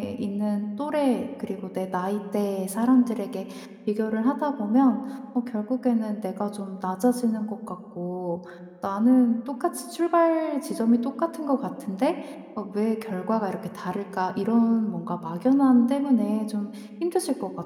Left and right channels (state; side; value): identical; both; correlation 1.00